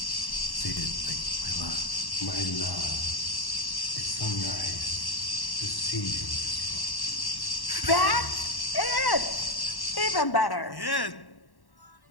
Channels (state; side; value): late; right; 1.1 ms